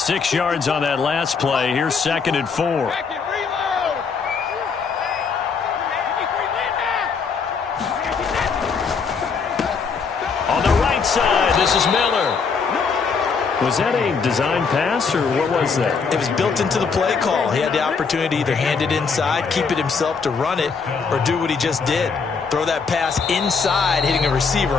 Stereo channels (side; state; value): right; quieter; 5.4 dB